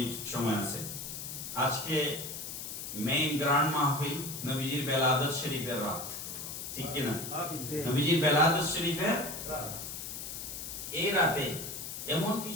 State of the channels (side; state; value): left; noise; hiss, 7 dB below the sound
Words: সময় আছে। আজকে মেইন গ্র্যান্ড মাহফিল নবীজির বেলাদত শরীফের রাত, ঠিক কি না? নবীজির বেলাদত শরীফের এই রাতে এমন